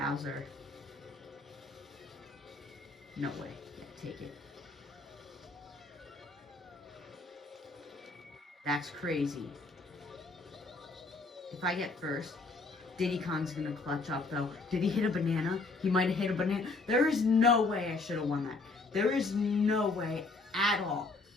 No way. Yeah, take it. That's crazy. If I get first, Diddy Kong's gonna clutch up though. Did he hit a banana? He might have hit a banana. There is no way I should have won that. There is no way at all.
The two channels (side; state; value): right; quieter; 3.6 dB